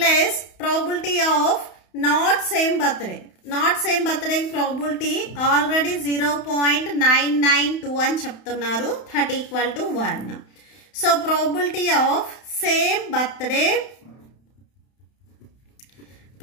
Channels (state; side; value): late; right; 31 ms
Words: probability of not same birthday. Not same birthday probability already 0.992 అని చెప్తున్నారు, that equal to 1. So probability of same birthday,